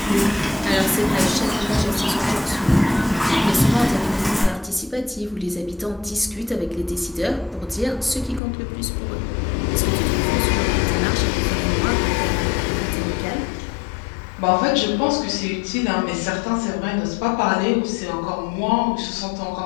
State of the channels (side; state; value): right; drops out; at 8.4 s